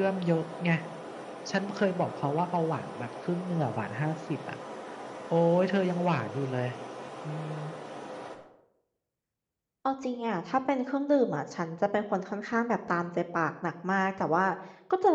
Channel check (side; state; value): both; identical; correlation 1.00